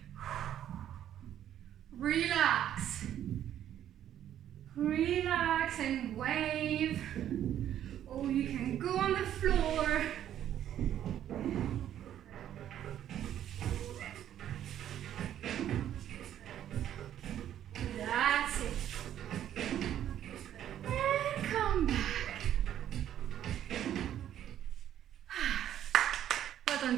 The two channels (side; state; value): left; quieter; 10.9 dB